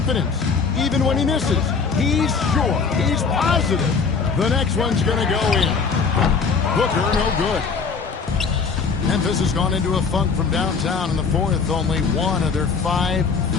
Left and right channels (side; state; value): right; quieter; 5.2 dB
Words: Even when he misses, he's sure, he's positive the next one's going to go in. Booker, no good. Memphis has gone into a funk from downtown in the 4th. Only 1 of their 5